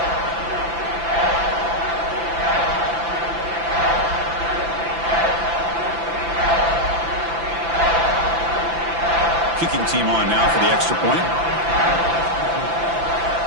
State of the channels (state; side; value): late; left; 5.9 ms